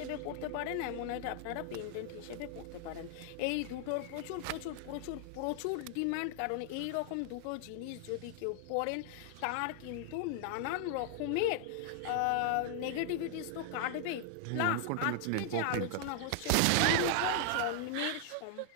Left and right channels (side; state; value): both; different; correlation 0.00